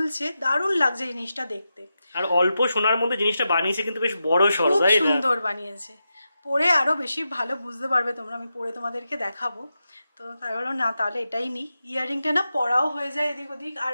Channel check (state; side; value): inverted; both; correlation -0.89